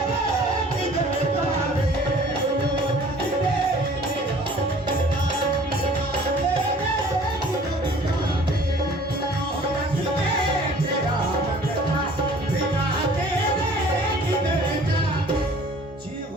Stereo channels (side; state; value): both; normal; correlation 0.51